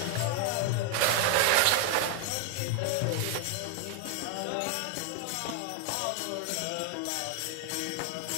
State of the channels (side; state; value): both; different; correlation 0.01